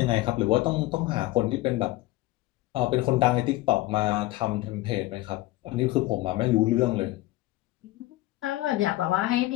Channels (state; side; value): quieter; right; 18.1 dB